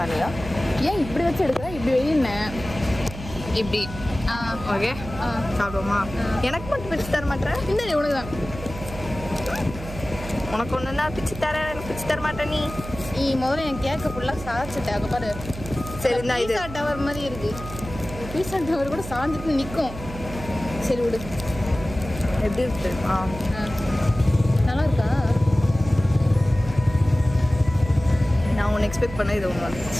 மேலேயா? ஏன் இப்படி வச்சு எடுக்கிற? இப்படி வெயின்னேன். இப்படி. ஓகே, சாப்பிடுவோமா? எனக்கு மட்டும் பிச்சு தர மாட்டேன். இந்த உனக்கு தான். உனக்கு ஒன்று தான் பிச்சு தரேன், எனக்கு பிச்சு தர மாட்டேன். நீ முதல்ல என் கேக்கை ஃபுல்லாக சாச்சிட்ட. அங்கே பாரு. சரி, இந்த இது பீஸா டவர் மாதிரி இருக்கு. பீஸா டவர் கூட சாஞ்சிட்டு நிற்கும். சரி விடு. எப்படி இருக்கு? நல்லா இருக்கா? நான் ஒன்று எக்ஸ்பெக்ட் பண்ண இது ஒன்று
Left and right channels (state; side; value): noise; right; hum, 11 dB below the sound